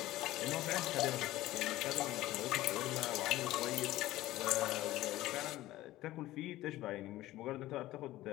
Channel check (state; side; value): quieter; right; 16.2 dB